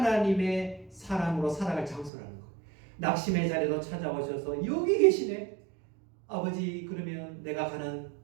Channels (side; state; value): left; drops out; at 2.1 s